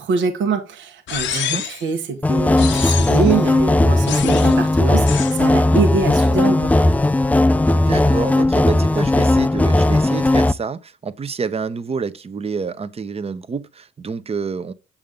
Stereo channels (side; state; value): both; normal; correlation 0.85